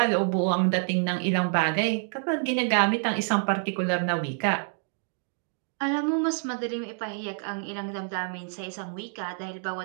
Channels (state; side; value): silent; left; 56 dB below the other